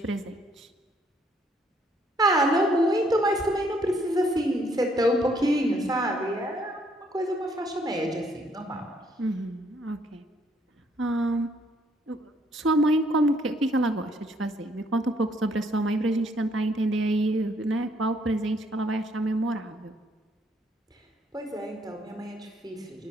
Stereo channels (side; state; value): both; normal; correlation 0.68